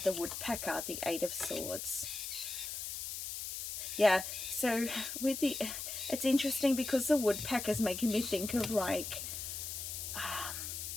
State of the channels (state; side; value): noise; left; hiss, 5 dB below the sound